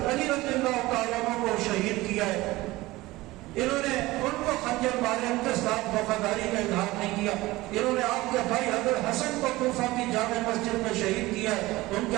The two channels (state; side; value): quieter; left; 19.2 dB